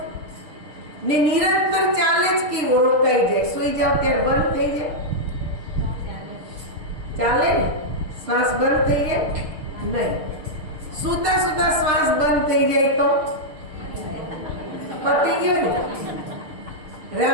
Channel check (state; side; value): late; left; 6.7 ms